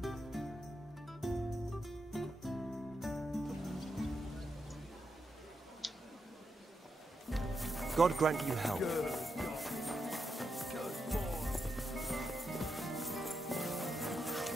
God grant you help.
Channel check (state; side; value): normal; both; correlation 0.84